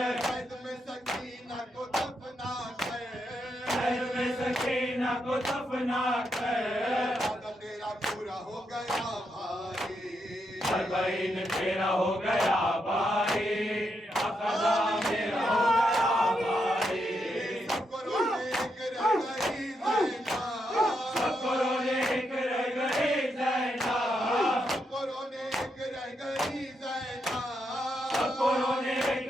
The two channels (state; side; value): normal; both; correlation 0.81